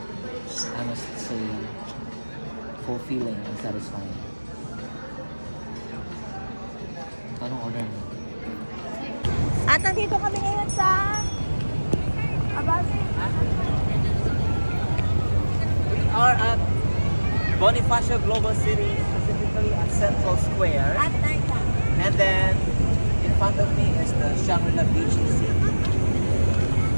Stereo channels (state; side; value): inverted; both; correlation -1.00